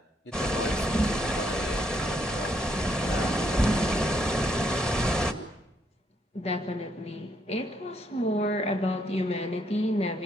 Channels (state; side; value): normal; both; correlation 0.73